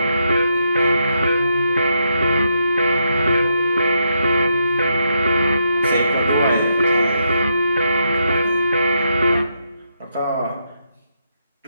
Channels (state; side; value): inverted; both; correlation -0.80